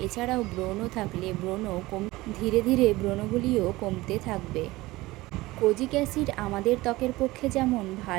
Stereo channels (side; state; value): left; quieter; 19.5 dB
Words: এছাড়াও ব্রণ থাকলে ধীরে ধীরে ব্রণগুলিও কমতে থাকবে। কোজিক অ্যাসিড আমাদের ত্বকের পক্ষে যেমন